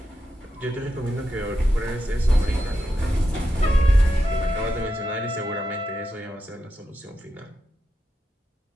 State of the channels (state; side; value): normal; both; correlation 0.87